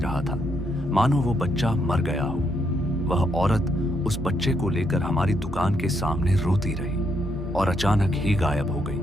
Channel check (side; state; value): both; normal; correlation 0.77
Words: था, मानो वो बच्चा मर गया हो। वह औरत उस बच्चे को लेकर हमारी दुकान के सामने रोती रही और अचानक ही गायब हो गई।